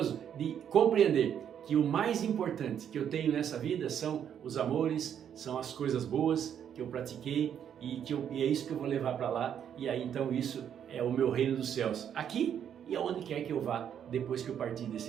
de compreender que o mais importante que eu tenho nessa vida são os amores, são as coisas boas que eu pratiquei e é isso que eu vou levar para lá. E aí então isso é o meu reino dos céus, aqui e aonde quer que eu vá depois que eu partir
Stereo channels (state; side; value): quieter; left; 8.9 dB